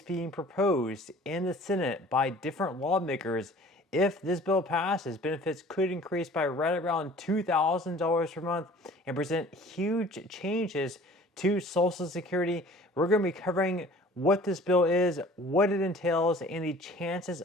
being proposed in the Senate by different lawmakers. If this bill passes, benefits could increase by right around $2,000 per month and present huge changes to Social Security. We're going to be covering what this bill is, what it entails, and the chances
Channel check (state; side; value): normal; both; correlation 0.48